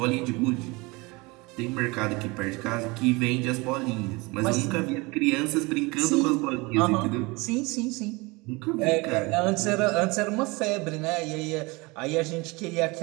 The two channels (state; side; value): quieter; left; 25.0 dB